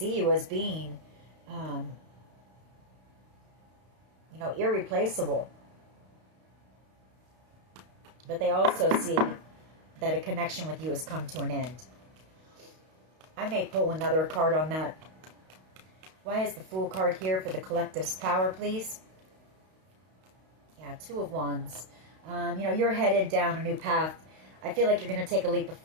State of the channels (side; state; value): left; late; 32 ms